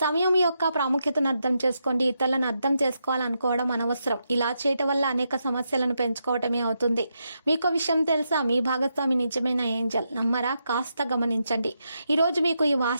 సమయం యొక్క ప్రాముఖ్యతను అర్థం చేసుకోండి. ఇతరులను అర్థం చేసుకోవాలనుకోవడం అనవసరం. ఇలా చేయటం వల్ల అనేక సమస్యలను పెంచుకోవటమే అవుతుంది. మీకు విషయం తెలుసా? మీ భాగస్వామి నిజమైన ఏంజల్. నమ్మరా? కాస్త గమనించండి. ఈ రోజు మీకు ఈ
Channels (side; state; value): both; inverted; correlation -0.83